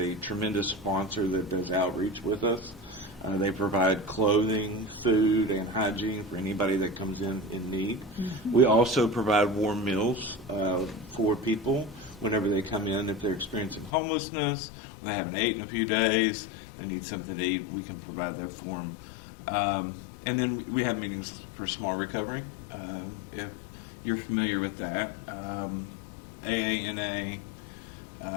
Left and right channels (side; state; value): right; drops out; at 13.9 s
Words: tremendous sponsor that does outreach with us. They provide clothing, food, and hygiene for anybody that comes in need. We also provide warm meals for people whenever they come in. If they're experiencing homelessness, they haven't eaten in a few days, they need something to eat, we can provide that for them. And then we have meetings for smart recovery, if you're familiar with that. AANA,